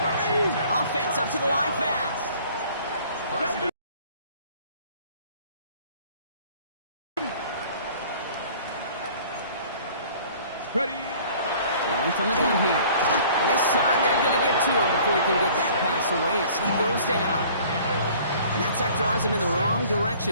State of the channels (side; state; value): both; inverted; correlation -0.52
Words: Offense up to the line fast. Ready. Throwing from the gun here. And this time they're going to get to him before he can get that pass away as he goes down. And that sack draws him in the wrong